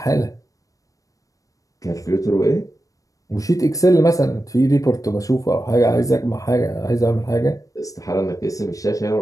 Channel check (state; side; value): late; right; 0.16 ms